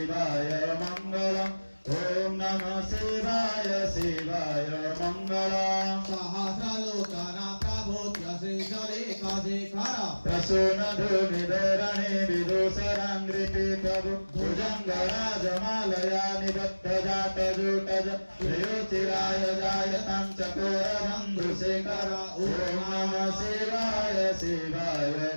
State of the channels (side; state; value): both; inverted; correlation -1.00